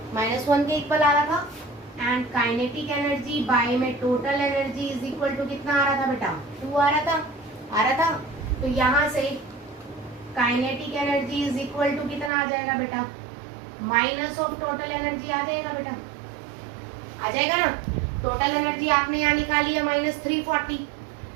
-1 के इक्वल आ रहा था, एंड काइनेटिक एनर्जी बाय में total energy is equal to कितना आ रहा था बेटा, 2 आ रहा था। तो यहाँ से kinetic energy is equal to कितना आ जाएगा बेटा, माइनस ऑफ टोटल एनर्जी आ जाएगा बेटा, आ जाएगा ना। टोटल एनर्जी आपने यहाँ निकाली है -340,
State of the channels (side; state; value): left; drops out; at 12.3 s